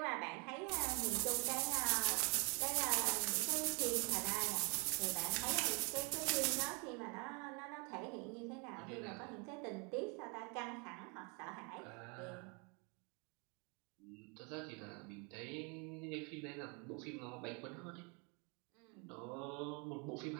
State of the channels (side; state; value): left; quieter; 32.9 dB